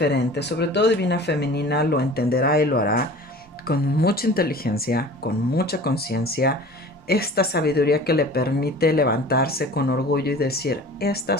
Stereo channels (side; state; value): both; normal; correlation 0.42